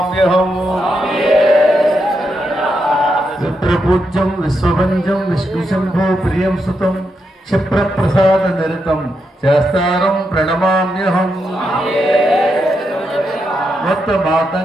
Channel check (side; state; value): both; normal; correlation 0.83